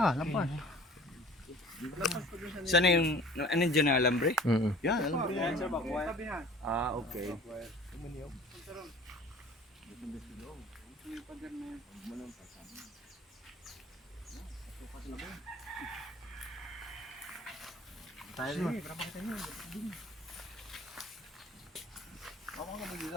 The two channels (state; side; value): normal; both; correlation 0.47